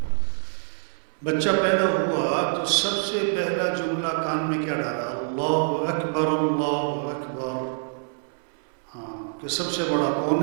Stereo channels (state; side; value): silent; left; 59 dB below the other